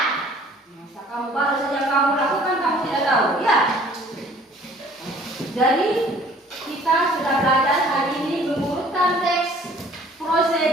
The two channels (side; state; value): both; normal; correlation 0.54